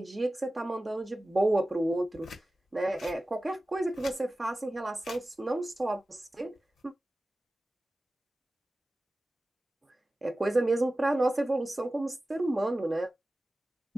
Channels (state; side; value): normal; both; correlation 0.96